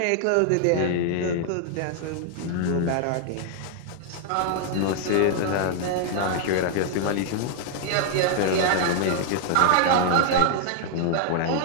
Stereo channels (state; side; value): different; both; correlation 0.00